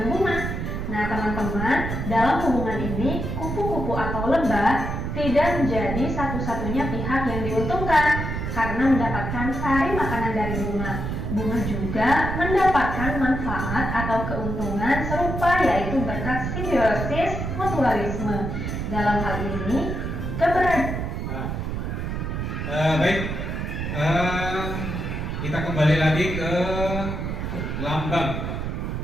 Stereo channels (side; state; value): right; noise; rumble, 3 dB below the sound